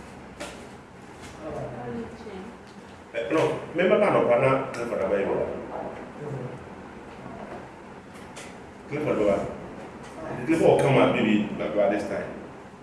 No, remember man or partner, for the Bible. Clifford Doa. Clifford will come out maybe by this time.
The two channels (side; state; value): both; identical; correlation 1.00